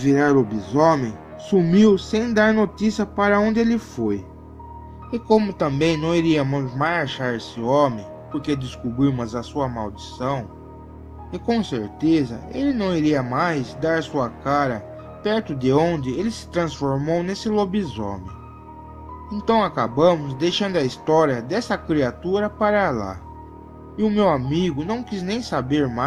lobisomem sumiu sem dar notícia para onde ele foi. E como também não iríamos mais achar esse homem, porque descobrimos a sua maldição, e com certeza ele não iria mais dar sua cara perto de onde ele se transformou nesse lobisomem. Então acabamos deixando a história dessa criatura para lá. E o meu amigo não quis nem saber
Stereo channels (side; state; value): both; identical; correlation 1.00